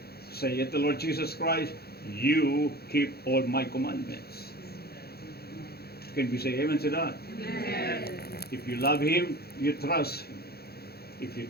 say it to Lord Jesus Christ, you keep all my commandments. Can we say amen to that? Amen. If you love Him, you trust Him. If you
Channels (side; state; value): right; late; 0.46 ms